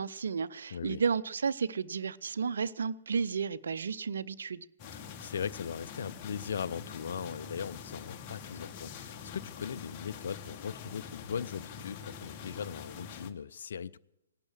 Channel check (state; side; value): inverted; both; correlation -0.72